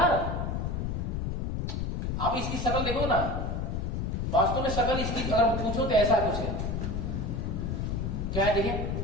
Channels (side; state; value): left; noise; rumble, 1 dB below the sound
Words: आप इसकी शक्ल देखो ना, वास्तव में शक्ल इसकी अगर पूछो तो ऐसा कुछ है, क्या है देखिए,